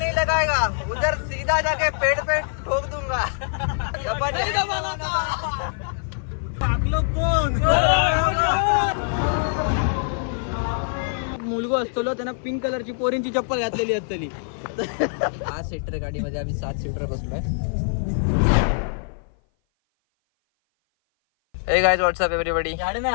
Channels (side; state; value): right; silent; 57 dB below the other